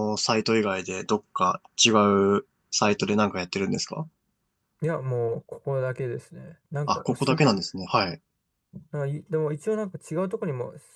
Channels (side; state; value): both; identical; correlation 1.00